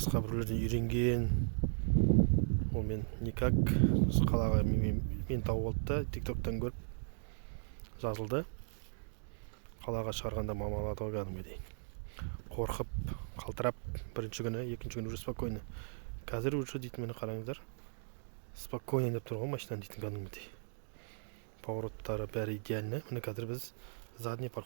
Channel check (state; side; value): silent; left; digital silence